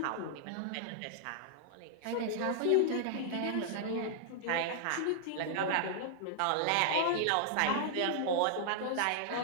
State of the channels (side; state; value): both; different; correlation -0.01